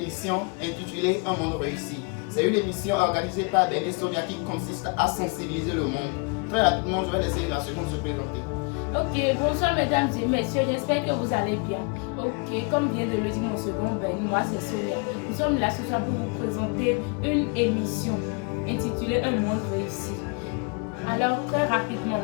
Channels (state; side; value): quieter; right; 33.1 dB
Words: intitulée Un monde réussi. C'est une émission organisée par Ben et Sonia qui consiste à sensibiliser le monde. Très rapidement, je vais laisser la seconde se présenter. Ok, bonsoir mesdames et messieurs, j'espère que vous allez bien. Ok, comme vient de le dire mon second Ben, moi c'est Sonia. Nous sommes là ce soir pour vous présenter une émission intitulée Un monde réussi. Alors très rapidement,